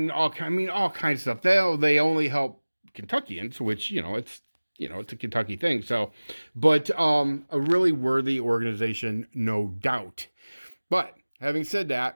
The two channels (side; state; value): both; inverted; correlation -1.00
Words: all kinds of stuff. They only help Kentuckians, which it's a Kentucky thing. So, but a really worthy organization, no doubt. But having said